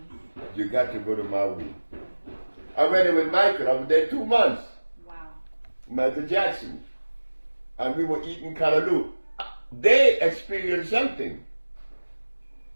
You got to go to Maui. I went there with Michael. I was there 2 months. Wow. Michael Jackson. And we were eating callaloo. They experienced something.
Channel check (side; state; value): both; inverted; correlation -1.00